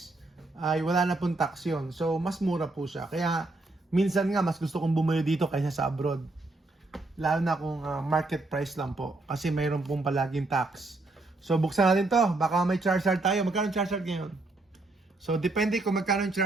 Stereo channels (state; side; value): quieter; left; 3.0 dB